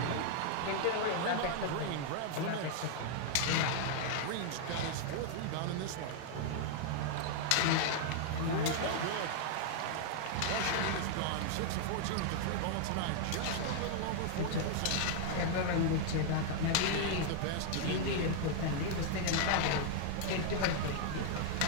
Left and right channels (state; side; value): different; both; correlation 0.00